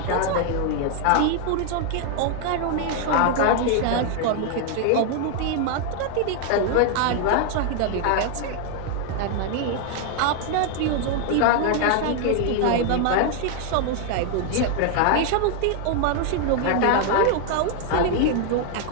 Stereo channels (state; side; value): different; both; correlation 0.00